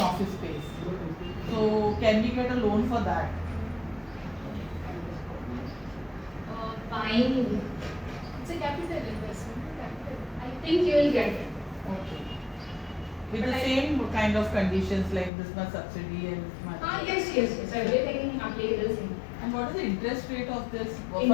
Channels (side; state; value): right; drops out; at 15.3 s